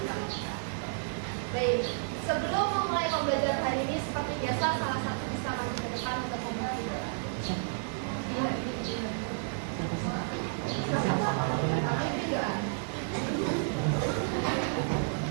kita. Baik, sebelum memulai pembelajaran hari ini, seperti biasa, salah satu bisa maju ke depan untuk memulai.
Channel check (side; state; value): left; silent; digital silence